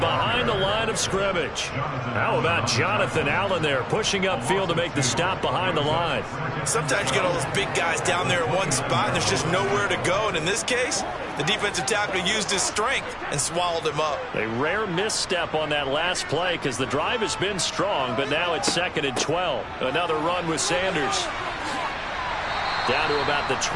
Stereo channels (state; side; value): identical; both; correlation 1.00